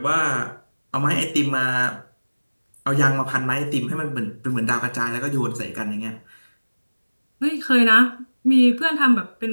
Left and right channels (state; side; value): inverted; both; correlation -1.00